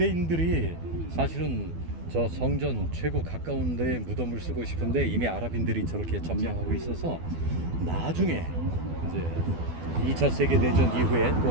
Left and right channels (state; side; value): late; left; 12 ms